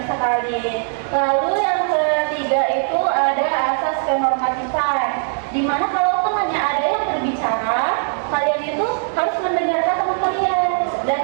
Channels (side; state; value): left; silent; digital silence